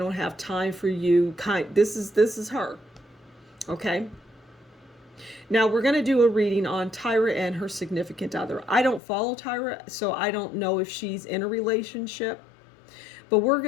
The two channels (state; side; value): drops out; right; at 9.0 s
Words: have time for you. This is her. Okay. Now we're going to do a reading on Tyra and her significant other. I don't follow Tyra, so I don't know if she's in a relationship, but we're